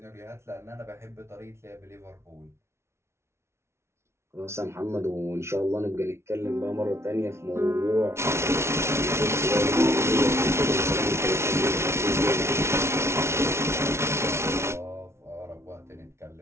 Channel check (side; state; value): left; late; 0.13 ms